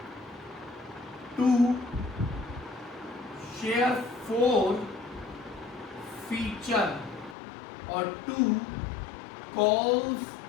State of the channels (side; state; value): right; drops out; at 7.4 s